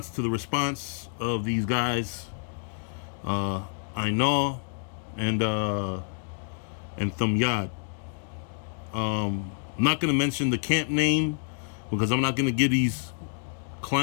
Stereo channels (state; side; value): silent; right; digital silence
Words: of these guys, I know, and Thumyad. I'm not gonna mention the camp name because I'm not gonna give these